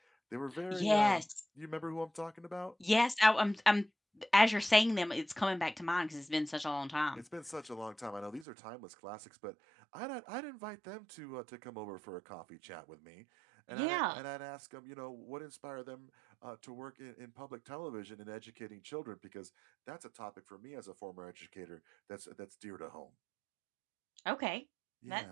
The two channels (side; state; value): left; drops out; at 8.5 s